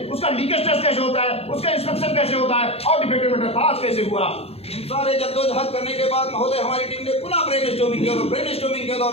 उसका लीकेज टेस्ट कैसे होता है, उसका इंस्पेक्शन कैसे होता है और डिफेक्टिव मीटर पास कैसे हुआ। इन सारे जद्दोजहद करने के बाद महोदय हमारी टीम ने पुनः ब्रेनस्टॉर्मिंग किया और ब्रेनस्टॉर्मिंग के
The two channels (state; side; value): late; right; 0.29 ms